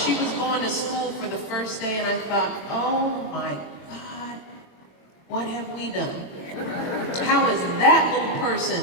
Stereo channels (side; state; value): right; late; 23 ms